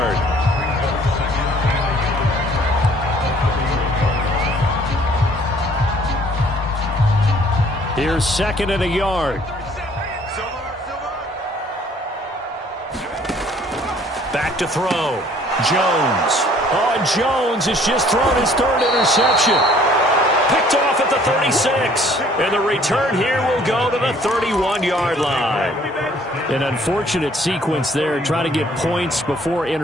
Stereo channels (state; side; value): normal; both; correlation 0.58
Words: Here's second and a yard. Back to throw. Jones. Oh, Jones has just thrown his third interception. Picked off at the 36. And the return here will go to the 31-yard line. An unfortunate sequence there, trying to get points before